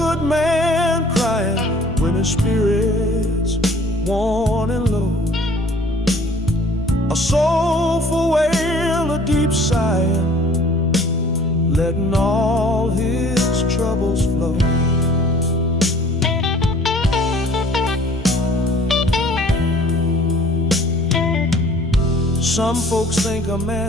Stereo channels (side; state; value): both; normal; correlation 0.52